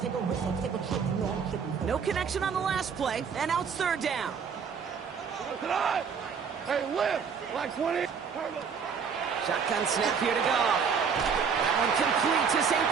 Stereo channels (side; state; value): left; quieter; 6.4 dB